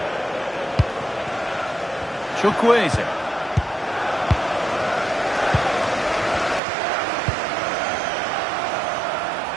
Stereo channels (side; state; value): left; drops out; at 6.6 s